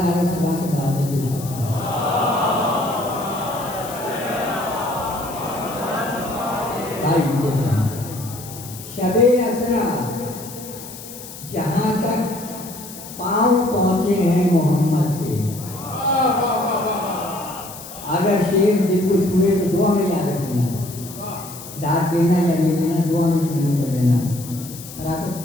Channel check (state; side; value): noise; left; hiss, 14 dB below the sound